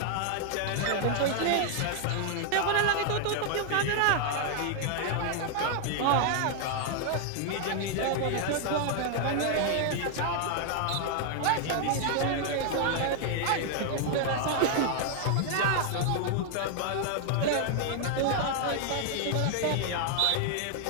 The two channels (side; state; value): both; different; correlation 0.00